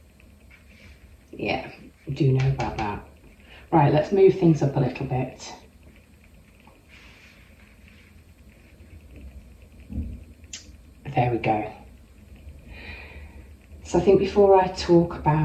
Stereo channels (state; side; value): identical; both; correlation 1.00